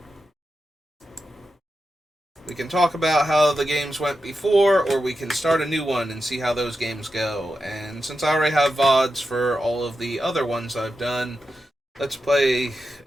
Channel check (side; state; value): both; normal; correlation 0.89